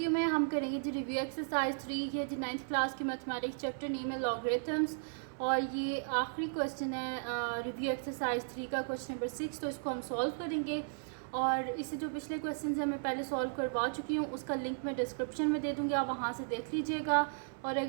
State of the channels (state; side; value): silent; left; 54 dB below the other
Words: में हम करेंगे जी रिव्यू एक्सरसाइज 3 ये जी 9th क्लास की मैथमेटिक्स चैप्टर नेम है लॉगरिथम्स और ये आखिरी क्वेश्चन है रिव्यू एक्सरसाइज 3 का क्वेश्चन नंबर 6। तो इसको हम सॉल्व करेंगे और इससे जो पिछले क्वेश्चन हैं मैं पहले सॉल्व करवा चुकी हूँ, उसका लिंक मैं डिस्क्रिप्शन में दे दूँगी, आप वहाँ से देख लीजिएगा। और